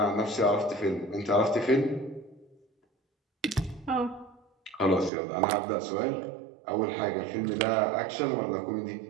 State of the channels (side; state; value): left; drops out; at 5.1 s